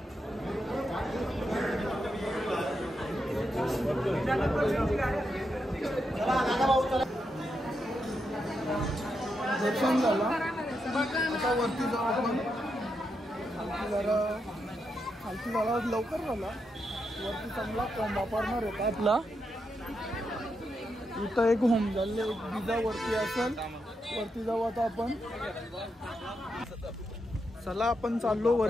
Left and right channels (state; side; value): normal; both; correlation 0.84